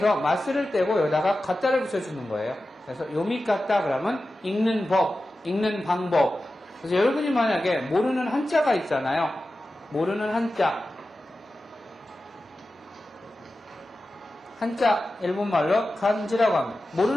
마스를 떼고 여기다가 가따를 붙여주는 거예요. 그래서 요미가따 그러면 읽는 법, 읽는 방법. 그래서 여러분이 만약에 모르는 한자가 있잖아요. 모르는 한자 일본말로 간지라고 합니다.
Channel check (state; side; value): normal; both; correlation 0.94